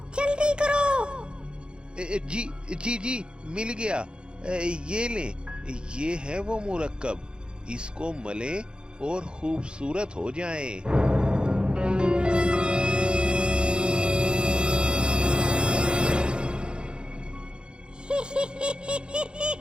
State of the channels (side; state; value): left; late; 0.052 ms